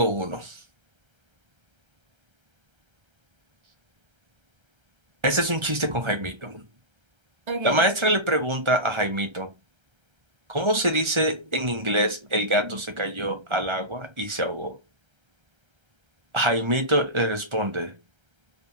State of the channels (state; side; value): late; left; 1.3 ms